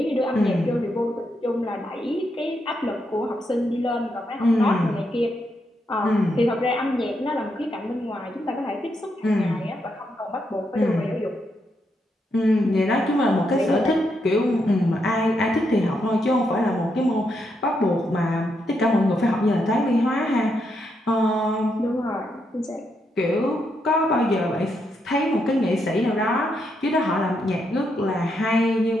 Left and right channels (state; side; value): normal; both; correlation 0.80